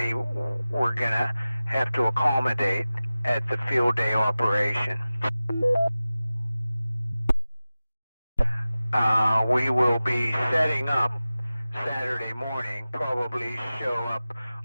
we're going to have to accommodate at the field day operation. We will be setting up Saturday morning, probably show up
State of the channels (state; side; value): inverted; both; correlation -0.96